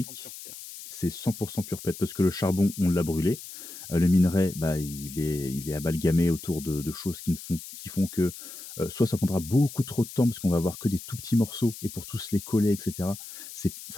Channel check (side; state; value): left; noise; hiss, 13 dB below the sound